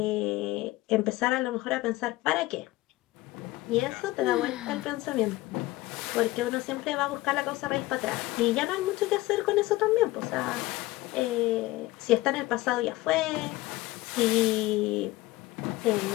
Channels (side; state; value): right; quieter; 18.8 dB